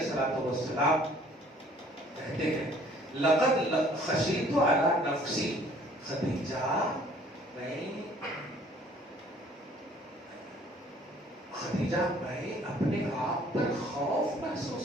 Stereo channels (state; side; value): normal; both; correlation 0.56